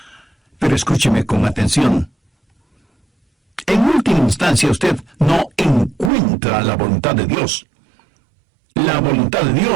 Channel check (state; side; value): drops out; left; at 6.1 s